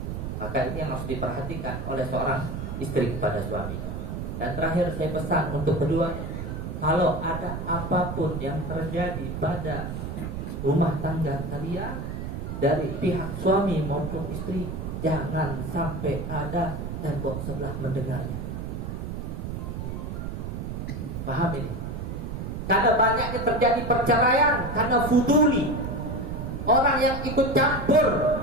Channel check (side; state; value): right; noise; rumble, 5 dB below the sound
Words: Maka ini yang harus diperhatikan oleh seorang istri kepada suaminya. Dan terakhir saya pesan untuk kedua, kalau ada apapun yang terjadi pada rumah tangga kalian dari pihak suami maupun istri, jangan sampai ada tembok sebelah mendengarnya. Paham ini? Karena banyaknya terjadi perceraian karena fuduli, orang yang ikut campur